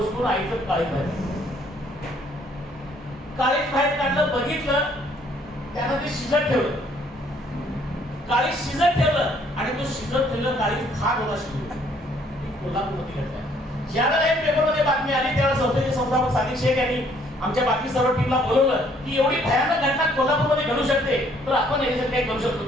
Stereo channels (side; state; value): both; normal; correlation 0.64